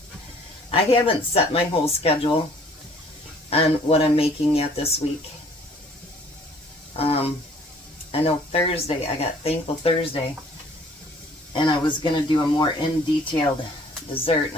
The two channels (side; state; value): both; normal; correlation 0.56